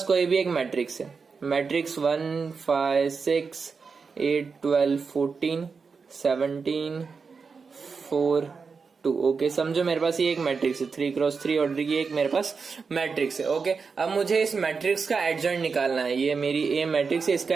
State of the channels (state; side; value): quieter; left; 5.1 dB